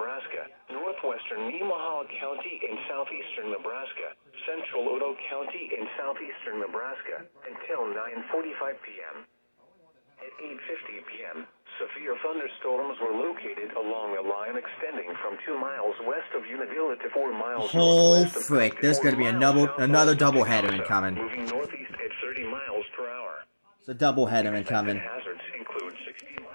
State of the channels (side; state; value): both; inverted; correlation -1.00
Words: northwestern Nemaha County in southeastern Nebraska, central Odo County in southeastern Nebraska until 9:45 p.m. At 8:50 p.m., severe thunderstorms were located along a line extending from 2 miles west of Unadilla to 4 miles Oh northwest of frick, there's gonna be another doubleheader incoming. moving northeast at 30 miles per hour. It's a doubleheader incoming. Hazards include 60